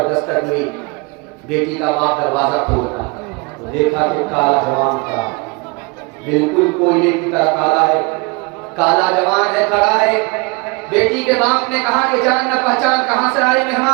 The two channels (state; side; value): quieter; left; 28.7 dB